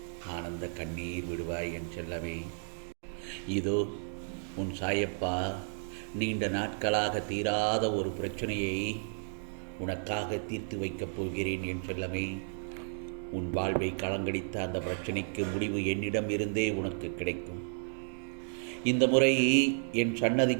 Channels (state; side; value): silent; left; digital silence